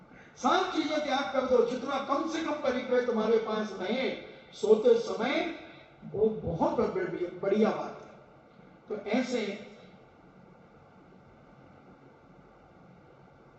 सब चीजें त्याग कर दो, जितना कम से कम परिक्रय तुम्हारे पास रहे सोते समय, वो बहुत बढ़िया बात है। तो ऐसे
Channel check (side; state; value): both; identical; correlation 1.00